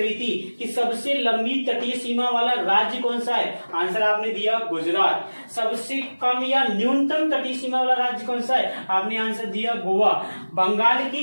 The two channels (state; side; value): inverted; both; correlation -1.00